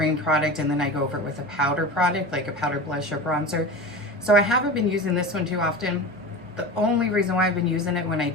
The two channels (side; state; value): both; normal; correlation 0.30